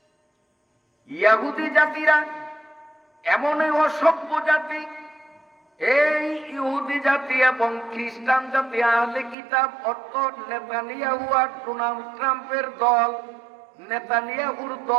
ইহুদি জাতিরা এমনই অসভ্য জাতি, এই ইহুদি জাতি এবং খ্রিস্টান জাতি, আহলে কিতাব অর্থাৎ নেতানিয়াহু আর ডোনাল্ড ট্রাম্পের দল। নেতানিয়াহুর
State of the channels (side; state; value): left; drops out; at 9.3 s